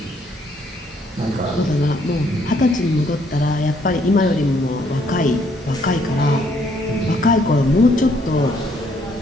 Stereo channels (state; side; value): normal; both; correlation 0.68